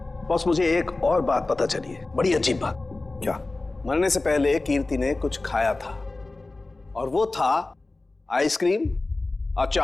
बॉस, मुझे एक और बात पता चली है, बड़ी अजीब बात। क्या? मरने से पहले कीर्ति ने कुछ खाया था, और वो था आइसक्रीम,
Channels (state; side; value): quieter; right; 3.2 dB